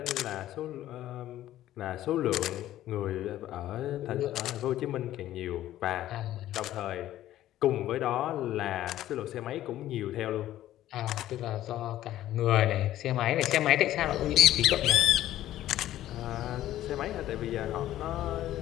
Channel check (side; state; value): right; quieter; 13.5 dB